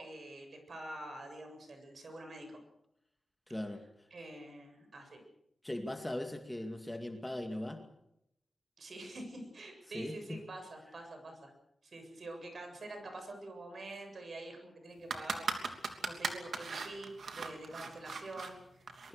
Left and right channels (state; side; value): normal; both; correlation 0.91